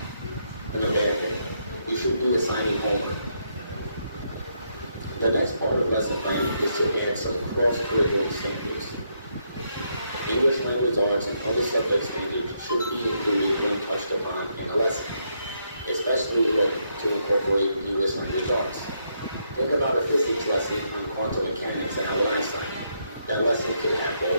a bad thing. You should be assigning homework. The next part of lesson planning is to add some cross-curricular examples. English language arts and other subject standards should be included when touched upon in a lesson, especially when to incorporate English language arts. Think about a physics lesson on quantum mechanics and Albert Einstein. That lesson could have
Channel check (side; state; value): both; inverted; correlation -0.77